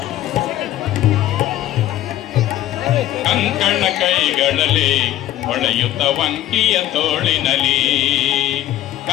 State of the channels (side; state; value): right; quieter; 13.6 dB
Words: ಕಂಕಣ ಕೈಗಳಲ್ಲಿ ಹೊಳೆಯುತ್ತ ವಂಕಿಯ ತೋಳಿನಲಿ